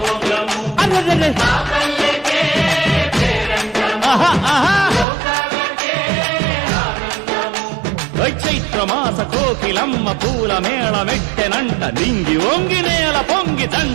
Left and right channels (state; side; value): drops out; left; at 5.1 s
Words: చైత్రమాస కోకిలమ్మ పూల మేళ మెట్టెనంట. నింగి వంగి నేల పొంగి